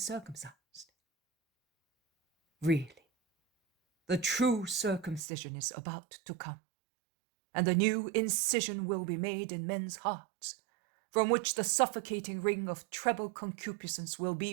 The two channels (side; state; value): left; drops out; at 5.2 s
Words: Really, the true circumcision is about to come, and a new incision will be made in men's hearts, from which the suffocating ring of treble concupiscence will